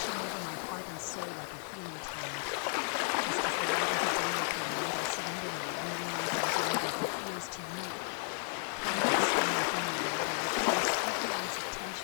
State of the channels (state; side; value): silent; right; 55 dB below the other